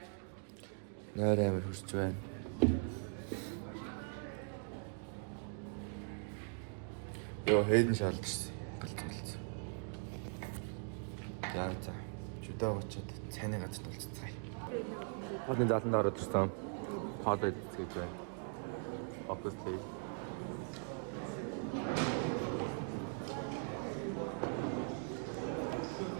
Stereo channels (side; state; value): left; silent; 51 dB below the other